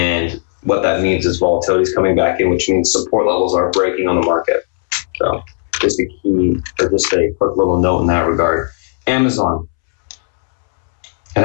what that means is volatility is coming back in, which means support levels are breaking on the market. So just a quick little note in that regard. Amazon. It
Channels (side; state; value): right; silent; 69 dB below the other